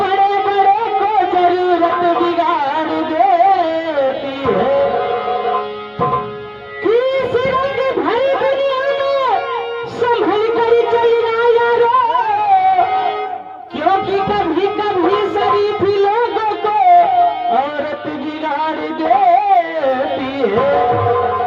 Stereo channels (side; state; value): both; identical; correlation 1.00